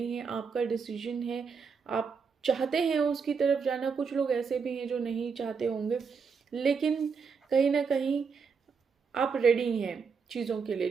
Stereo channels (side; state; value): left; quieter; 5.6 dB